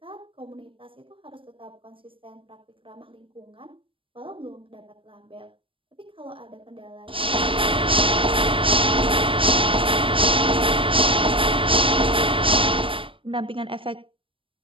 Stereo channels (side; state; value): left; late; 0.25 ms